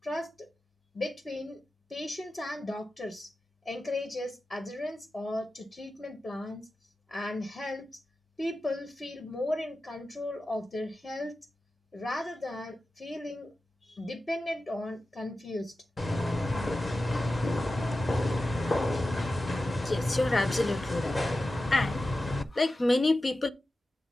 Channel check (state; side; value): normal; both; correlation 0.93